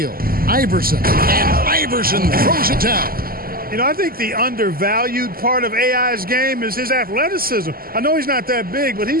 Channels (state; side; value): late; left; 0.42 ms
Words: Iverson. And Iverson throws it down. You know, I think the undervalued part of AI's game is his athleticism. I know he's not that big, but